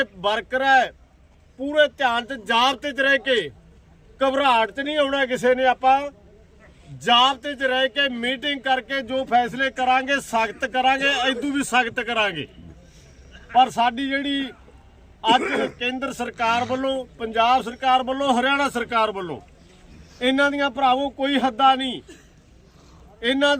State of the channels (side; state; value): both; identical; correlation 1.00